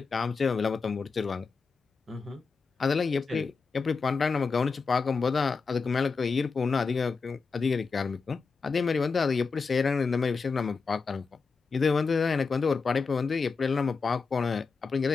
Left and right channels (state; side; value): quieter; right; 4.7 dB